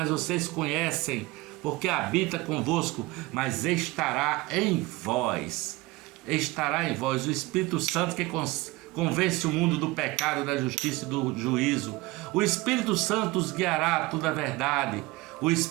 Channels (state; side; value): quieter; left; 20.8 dB